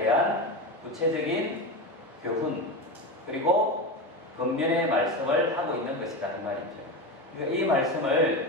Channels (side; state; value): both; normal; correlation 0.20